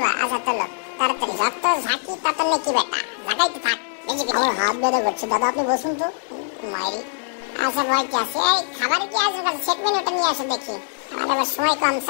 আচ্ছা তোলো তাড়াতাড়ি। যত ঝাঁকি তত নাকি বেটা, লাগাইতে থাক। আমার হাত ব্যথা করছে দাদা, আপনি বসুন তো। মাইরি আচ্ছা ভয় কি আছে? এই খাবার কি আছে? সেট মেনুটা নিয়ে আসো দেখি। আমার আবার সময় কম,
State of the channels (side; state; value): right; silent; digital silence